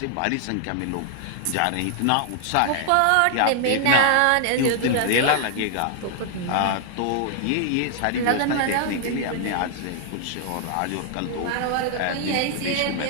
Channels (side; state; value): both; different; correlation 0.00